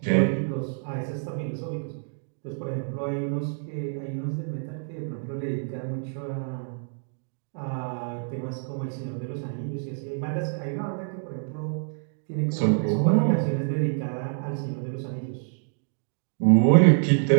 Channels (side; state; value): left; silent; digital silence